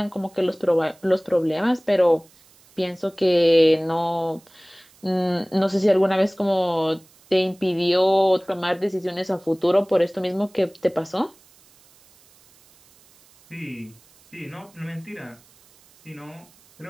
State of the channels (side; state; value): right; noise; hiss, 29 dB below the sound